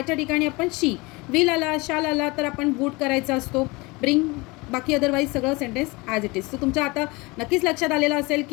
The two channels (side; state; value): right; quieter; 25.0 dB